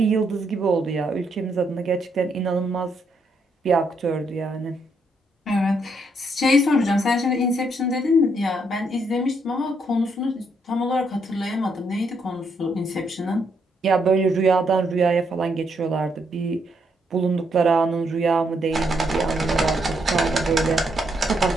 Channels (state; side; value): normal; both; correlation 0.75